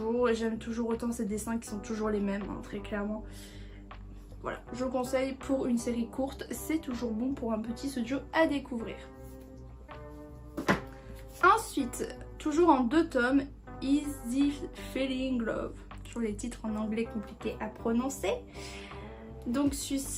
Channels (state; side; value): identical; both; correlation 1.00